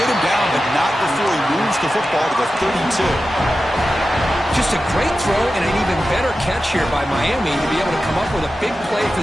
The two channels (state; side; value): normal; both; correlation 0.93